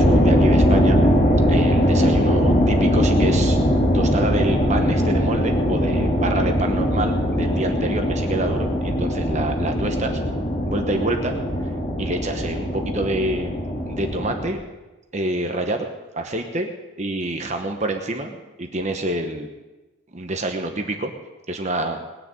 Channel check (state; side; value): normal; both; correlation 0.66